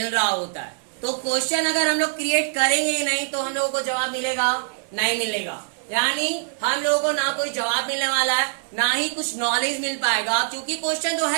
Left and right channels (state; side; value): silent; left; 63 dB below the other